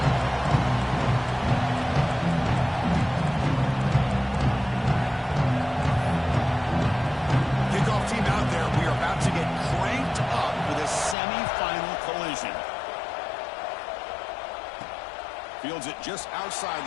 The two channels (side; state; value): right; drops out; at 11.2 s